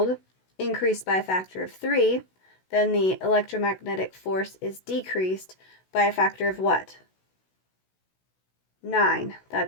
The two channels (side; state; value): right; late; 16 ms